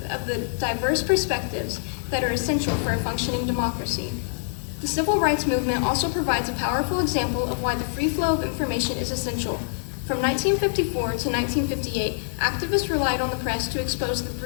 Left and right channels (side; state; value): right; silent; digital silence